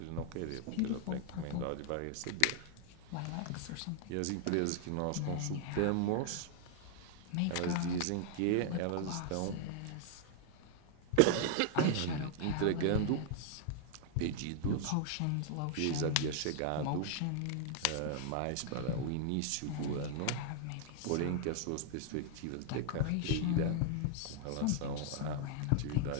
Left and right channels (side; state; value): both; different; correlation 0.00